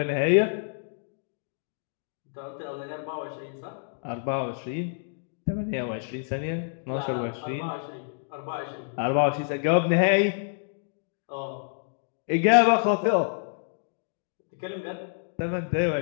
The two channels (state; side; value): silent; right; digital silence